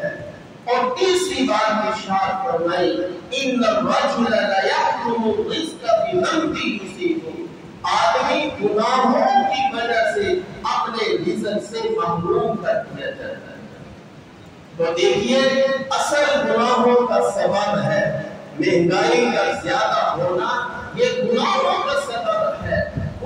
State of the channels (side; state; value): both; identical; correlation 1.00